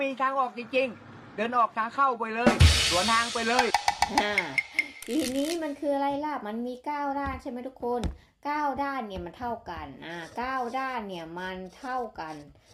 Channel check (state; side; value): identical; both; correlation 1.00